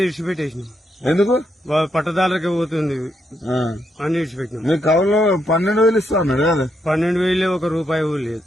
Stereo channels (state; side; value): normal; both; correlation 0.78